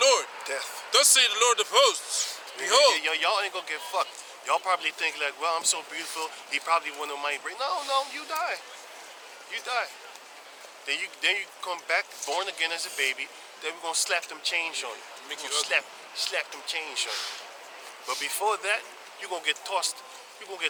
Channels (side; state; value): both; identical; correlation 1.00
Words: Death. Thus say the Lord of hosts. Behold, Y'all ain't going to get fucked. Y'all probably think like, well, I'm so beautiful. He probably wouldn't mind bring. No, you die. You die. Then you come back born again as a baby. Then we're gonna slap them chains on you. Make We're you gonna slap them chains on you. But before that, you're gonna get tossed. You're gonna